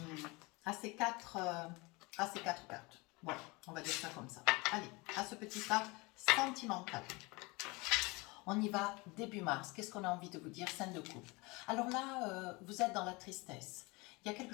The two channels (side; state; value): right; quieter; 25.5 dB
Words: ces quatre cartes. Voilà, on va dire ça comme ça. Allez, à ce petit tas sentimental. On y va début mars. Qu'est-ce qu'on a envie de vous dire? Scène de couple. Alors là, vous êtes dans la tristesse. Il y a quelque